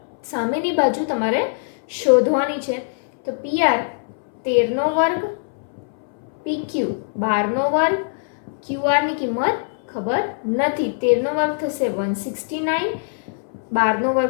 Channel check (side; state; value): right; silent; 64 dB below the other